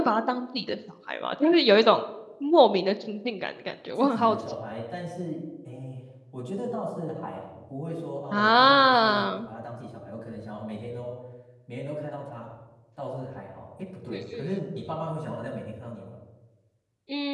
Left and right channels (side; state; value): both; identical; correlation 1.00